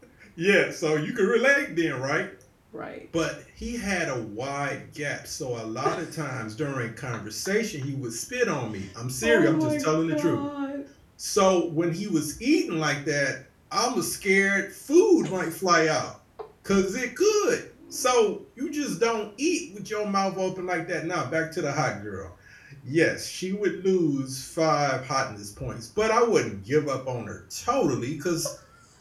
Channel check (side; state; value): both; identical; correlation 1.00